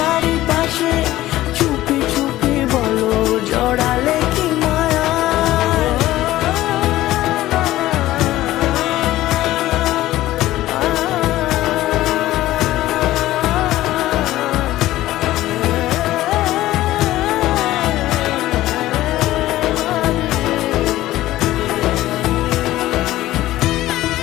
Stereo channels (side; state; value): right; quieter; 15.6 dB